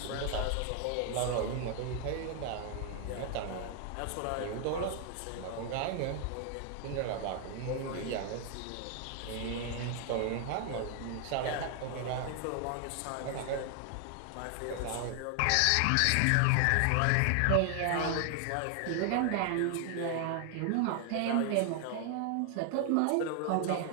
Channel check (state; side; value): different; both; correlation 0.00